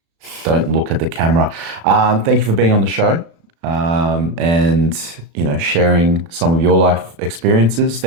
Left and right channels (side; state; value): left; late; 35 ms